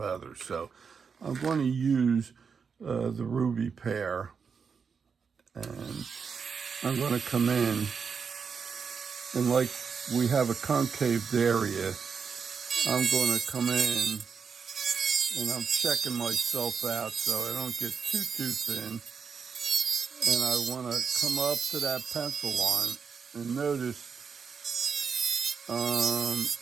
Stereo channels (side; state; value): left; quieter; 6.0 dB